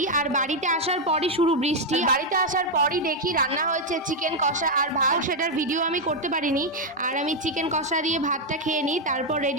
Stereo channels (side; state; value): both; normal; correlation 0.01